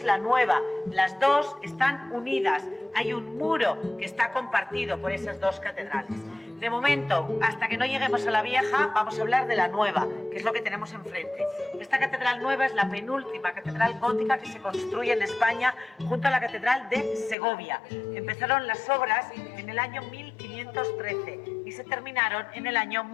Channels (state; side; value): drops out; right; at 17.4 s